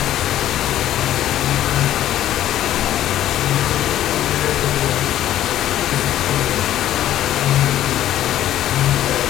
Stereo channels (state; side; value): quieter; right; 12.5 dB